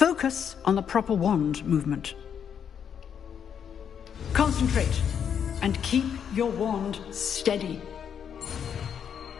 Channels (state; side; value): quieter; right; 8.0 dB